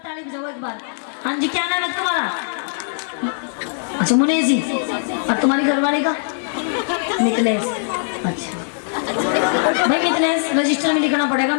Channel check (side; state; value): right; silent; 65 dB below the other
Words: ताली बजाओ एक बार। हाँ जी, क्या नाम है तुम्हारा? अच्छा मुनेश जी। और तुम्हारी घरवाली का? मिथिलेश। अच्छा भाई मिथिलेश रजिस्टर में लिखना पड़ेगा,